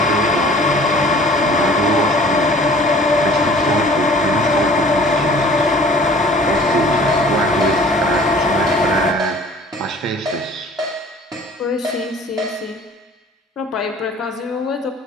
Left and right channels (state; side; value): normal; both; correlation 0.49